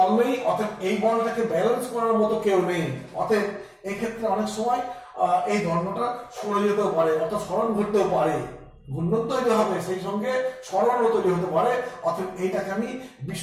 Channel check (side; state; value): both; identical; correlation 1.00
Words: নেই, অতএব এই বলটাকে ব্যালেন্স করার মতো কেউ নেই, অতএব এই ক্ষেত্রে অনেক সময় এই দণ্ডটা সরে যেতেও পারে, অর্থাৎ সরণ ঘটতেও পারে। ঘূর্ণন তৈরি হবে, সেই সঙ্গে সরণও তৈরি হতে পারে। অতএব এইটাকে আমি